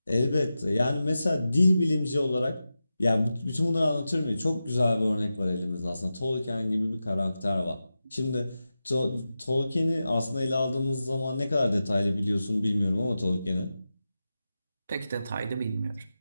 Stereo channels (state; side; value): inverted; both; correlation -0.92